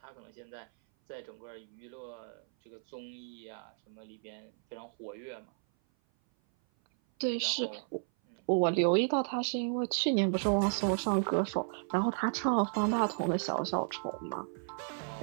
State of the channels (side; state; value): left; silent; 55 dB below the other